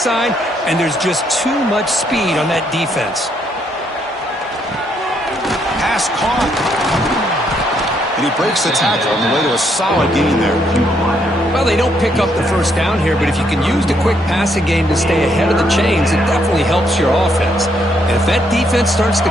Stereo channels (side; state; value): both; normal; correlation 0.73